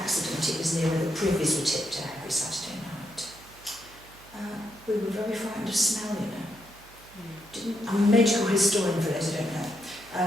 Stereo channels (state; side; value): noise; right; hum, 24 dB below the sound